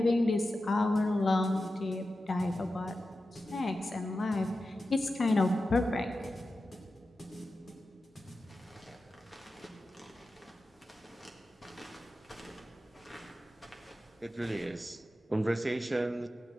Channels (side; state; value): both; normal; correlation 0.92